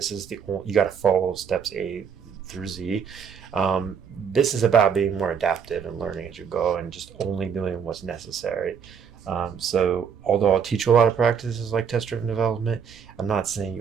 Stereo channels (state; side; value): quieter; left; 6.9 dB